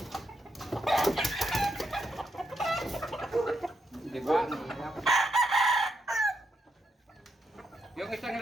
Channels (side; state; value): both; normal; correlation 0.80